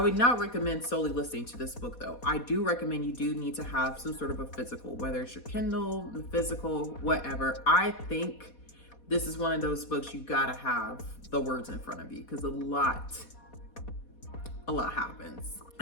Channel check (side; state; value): right; late; 4.2 ms